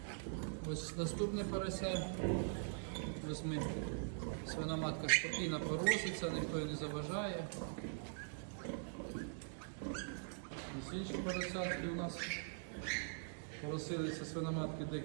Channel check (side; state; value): left; silent; digital silence